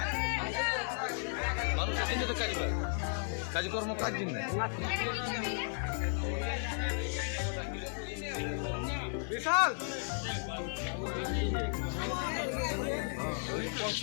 কাজকর্ম কাজ দিন বিশাল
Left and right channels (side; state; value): right; silent; 55 dB below the other